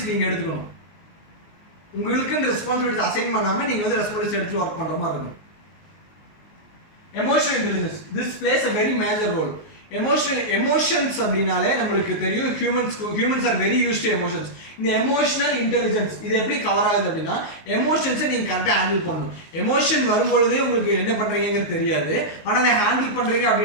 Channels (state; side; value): late; right; 19 ms